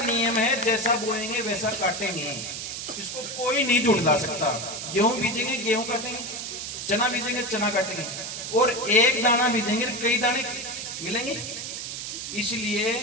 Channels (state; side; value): noise; right; hiss, 6 dB below the sound